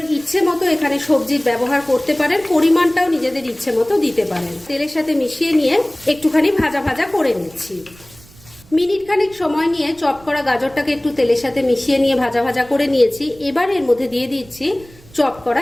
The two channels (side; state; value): right; noise; rumble, 24 dB below the sound